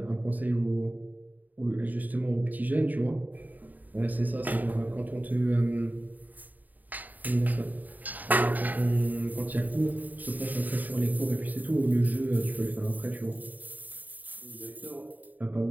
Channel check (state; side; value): late; left; 0.083 ms